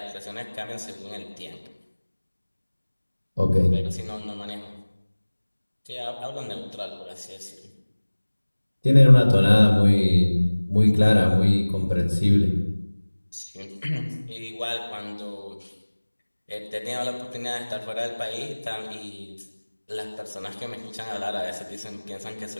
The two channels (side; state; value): both; inverted; correlation -1.00